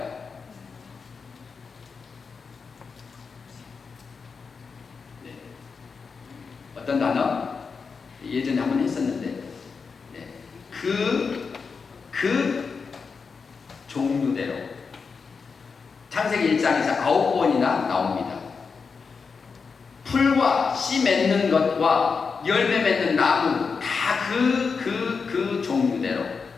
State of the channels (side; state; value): right; quieter; 5.2 dB